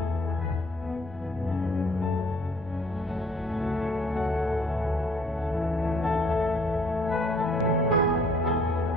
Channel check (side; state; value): both; normal; correlation 0.59